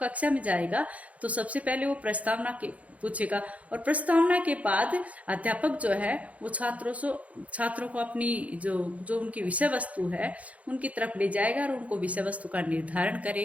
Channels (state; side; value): late; left; 0.067 ms